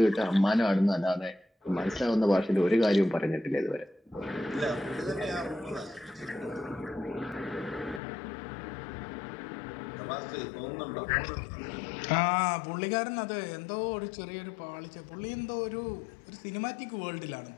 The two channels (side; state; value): right; drops out; at 8.0 s